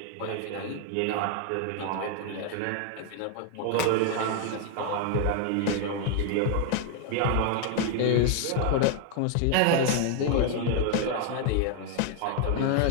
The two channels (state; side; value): different; both; correlation 0.00